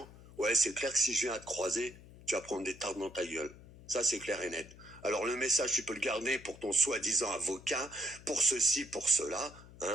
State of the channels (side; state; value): left; noise; hum, 19 dB below the sound